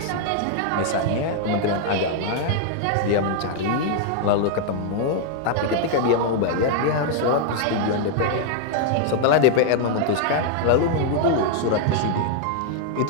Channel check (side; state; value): both; different; correlation 0.00